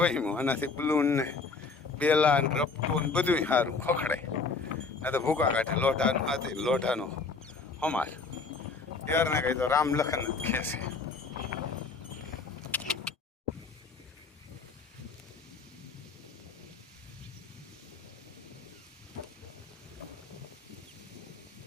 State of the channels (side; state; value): right; quieter; 4.4 dB